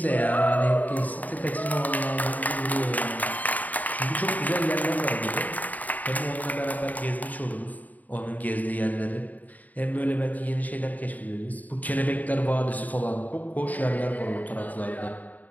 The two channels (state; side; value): late; right; 0.077 ms